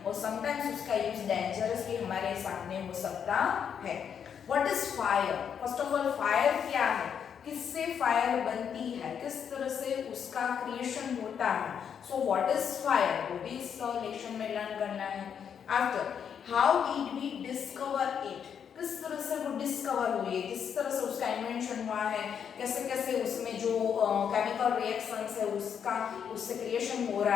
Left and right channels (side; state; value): right; quieter; 7.8 dB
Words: और sometimes उसका use dangerous भी हमारे सामने हो सकता है. What is fire? First of all, fire क्या है, किससे फायर बनती है, किस तरह से उसका क्रिएशन होता है. सो व्हाट इज फायर, वो भी इस लेक्चर में लर्न करना है. After, how did we discover it, किस तरह से वो डिस्कवर हुई है, किस तरह से उसका इन्वेंशन हुआ है, कैसे कैसे उसमें जो केमिकल रिएक्शंस है उसका उससे क्रिएशन हो